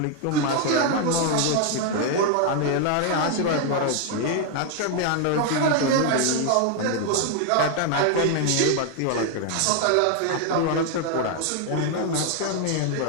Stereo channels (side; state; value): both; different; correlation 0.00